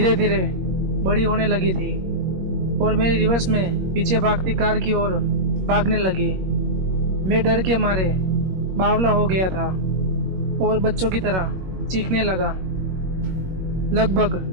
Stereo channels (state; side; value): late; left; 21 ms